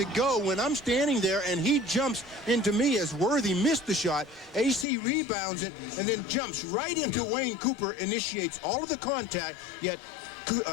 go when I'm standing there and he jumps into me as Worthy missed the shot? AC rebounds it and then jumps right into Wayne Cooper, initiates all of the contact, yet,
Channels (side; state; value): right; drops out; at 4.9 s